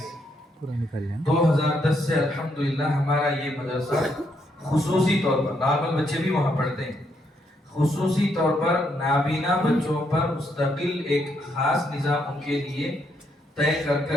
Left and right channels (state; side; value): normal; both; correlation 0.75